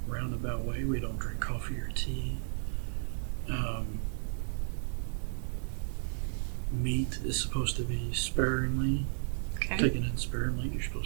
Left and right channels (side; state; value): left; silent; digital silence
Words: roundabout way. We don't drink coffee or tea. Meat is supposed to be sparingly, taken in sparingly. You're